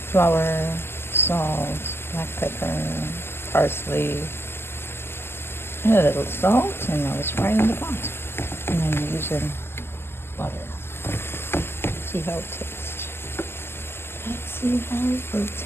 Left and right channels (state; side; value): late; right; 0.12 ms